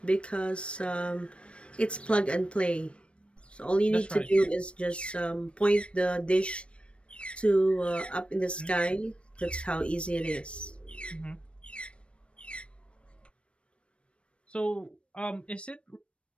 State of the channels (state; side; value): late; right; 0.060 ms